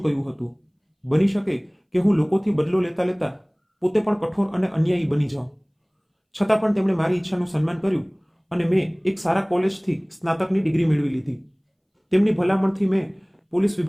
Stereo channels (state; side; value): identical; both; correlation 1.00